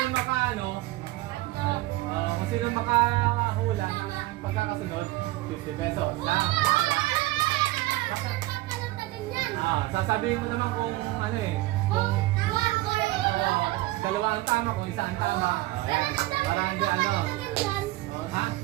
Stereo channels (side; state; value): left; quieter; 18.5 dB